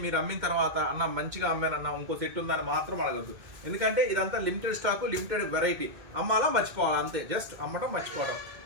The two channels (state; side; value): late; left; 2.2 ms